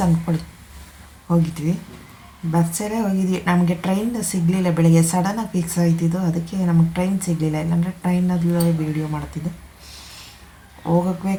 ಅಂದ್ಕೊಳ್ಳಿ ಹೋಗಿದ್ವಿ. ಬಸ್ಸಲ್ಲೇ ಹೋಗಿದ್ವಿ. ನಮಗೆ ಟ್ರೈನ್ ಸಿಗಲಿಲ್ಲ. ಬೆಳಗ್ಗೆ ಸಡನ್ನಾಗಿ ಫಿಕ್ಸ್ ಆಯ್ತಿದ್ದು, ಅದಕ್ಕೆ ನಮಗೆ ಟ್ರೈನ್ ಸಿಗಲಿಲ್ಲ. ಇಲ್ಲಾಂದರೆ ಟ್ರೈನಲ್ಲೇ ವೀಡಿಯೋ ಮಾಡ್ತಿದ್ದೆ.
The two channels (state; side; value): identical; both; correlation 1.00